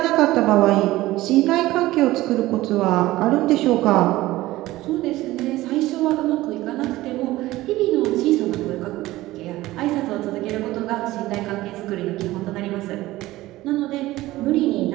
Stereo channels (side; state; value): left; quieter; 17.3 dB